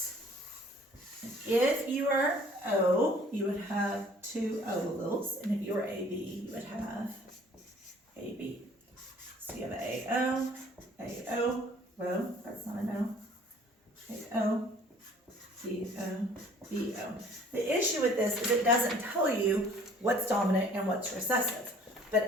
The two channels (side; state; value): both; normal; correlation 0.54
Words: If you are O, you would have 2 O alleles, and if you are AB, you would have AB. So you have AO, AO, well, that's not an O, AO, BO, BO. The issue with this is it doesn't tell you what's dominant and what's recessive,